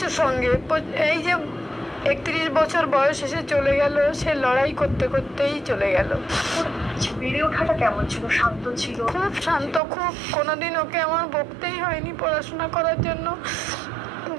সঙ্গে। এই যে 31 বছর বয়স এসে চলে গেল, সে লড়াই করতে করতেই চলে গেল। বেড়ে ওঠাটা কেমন ছিল? শান্ত ছিল? খুব শান্ত, খুব। কোনোদিন ওকে আমার বকতেই হয়নি পড়াশোনা করার জন্য।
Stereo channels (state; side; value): drops out; left; at 9.8 s